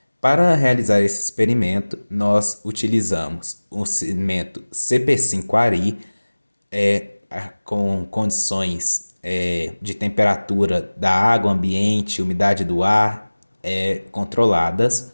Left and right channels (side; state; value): both; inverted; correlation -1.00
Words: Para realizar esse experimento, nós utilizamos o cimento CP5 Ari, com condições de temperatura da água ambiente, umidade do ar controladas,